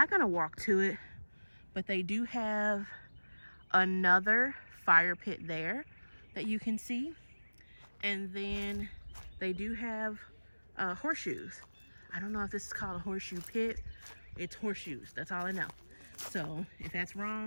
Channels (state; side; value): inverted; both; correlation -1.00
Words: going to walk to it, but they do have another fire pit there that you can see. And then they do have horseshoes. I don't know if this is called a horseshoe pit. It's horseshoes, that's all I know. So if that's